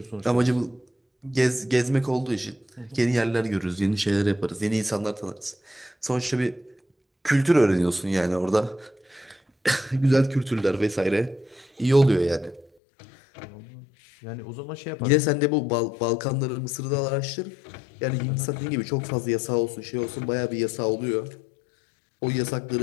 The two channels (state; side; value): drops out; right; at 12.7 s